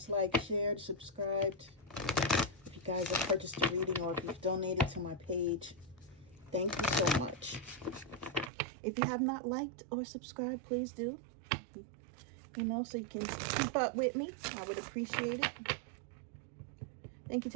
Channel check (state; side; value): drops out; left; at 8.5 s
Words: liked, shared, subscribed. If you guys have purchased a reading or if you've donated to my page, thank you so much. If you have not liked or subscribed, please do. So you can keep up with me. I would appreciate it. Thank you